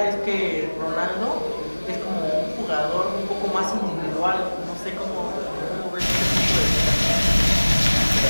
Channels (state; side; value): inverted; both; correlation -1.00